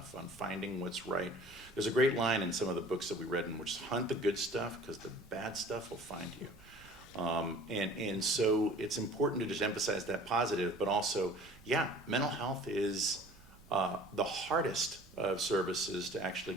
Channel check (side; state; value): right; noise; rumble, 23 dB below the sound